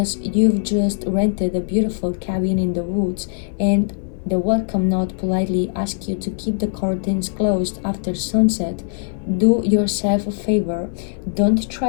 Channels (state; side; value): silent; right; 58 dB below the other